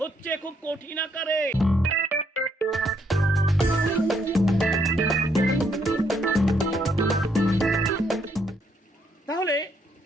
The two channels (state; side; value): normal; both; correlation 0.72